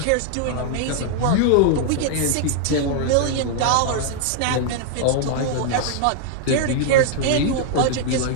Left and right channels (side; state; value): both; different; correlation -0.01